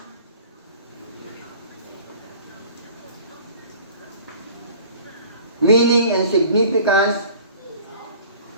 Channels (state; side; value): inverted; both; correlation -0.46